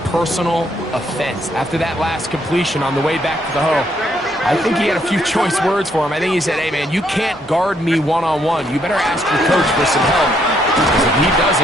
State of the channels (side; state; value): both; normal; correlation 0.72